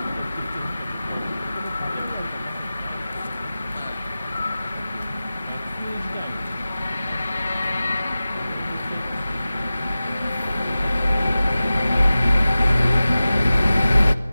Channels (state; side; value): inverted; both; correlation -0.96